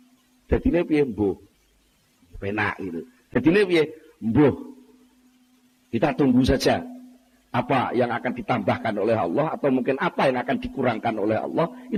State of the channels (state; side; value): identical; both; correlation 1.00